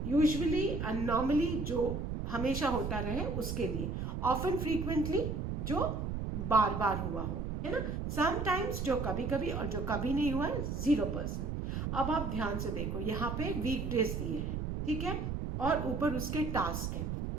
यूजुअली एंड नॉर्मली जो हमेशा होता रहे उसके लिए. ऑफन, फ्रीक्वेंटली जो बार बार हुआ हो, है ना. समटाइम्स जो कभी कभी, और जो कभी नहीं हुआ है 0%. अब आप ध्यान से देखो, यहाँ पे वीकडेज दिए हैं, ठीक है, और ऊपर उसके टास्क हैं.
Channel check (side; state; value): right; noise; rumble, 3 dB below the sound